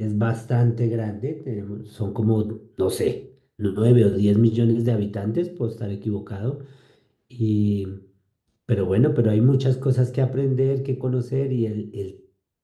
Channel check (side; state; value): both; identical; correlation 1.00